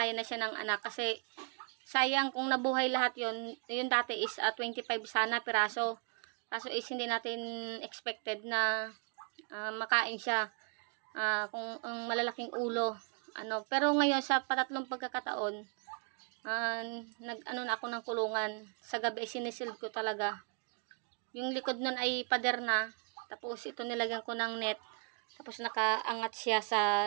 na siya ng anak kasi sayang kung nabuhay lahat yon. Yung dati is 25 sana piraso. Kaso is hindi natin expected na makain siya kung ang malalaking ulo. Pero ngayon sa patatlong pagkakataon, na ako ng kulungan. Sa gabi sinisil ko talaga. Yung likod nun ay pader na. Tapos ito nilagyan ko ng net. Tapos nakaangat siya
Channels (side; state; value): left; quieter; 38.8 dB